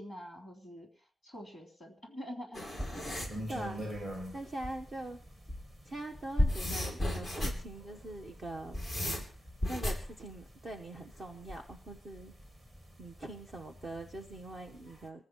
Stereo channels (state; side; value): normal; both; correlation 0.90